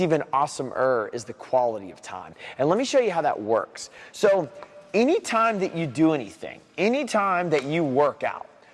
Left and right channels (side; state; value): both; identical; correlation 1.00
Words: even awesomer is the quality of time. And let me show you how that works. So anytime that you do anything, anytime that you work out,